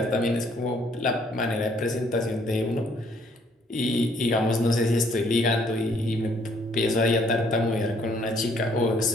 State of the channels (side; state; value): both; normal; correlation 0.65